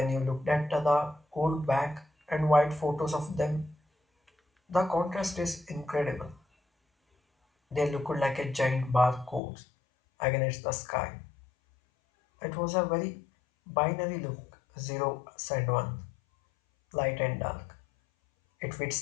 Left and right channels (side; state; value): right; drops out; at 9.4 s